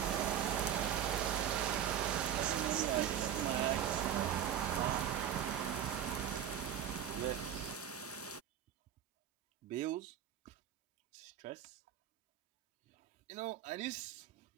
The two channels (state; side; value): quieter; left; 9.6 dB